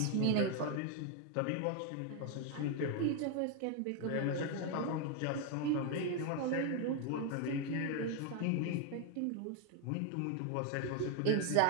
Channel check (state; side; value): different; both; correlation 0.01